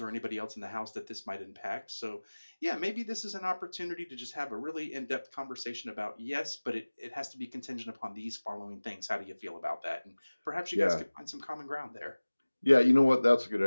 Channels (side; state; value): both; inverted; correlation -1.00